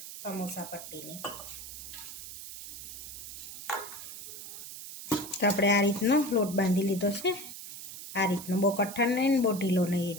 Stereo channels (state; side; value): noise; right; hiss, 11 dB below the sound